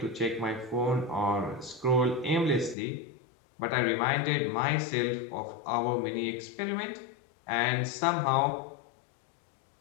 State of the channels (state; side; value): drops out; right; at 2.8 s